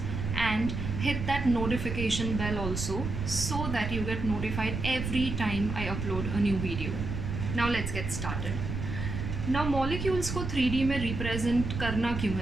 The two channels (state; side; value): noise; right; rumble, 4 dB below the sound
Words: and hit that notification bell also so that you get notified every time I upload a new video. Now let's get started. Now molecules को 3D में represent करना क्यों